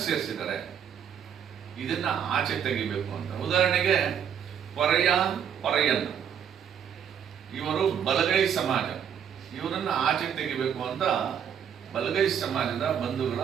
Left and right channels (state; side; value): quieter; left; 8.3 dB